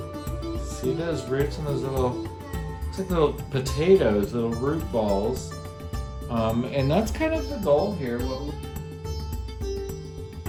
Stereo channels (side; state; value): both; identical; correlation 1.00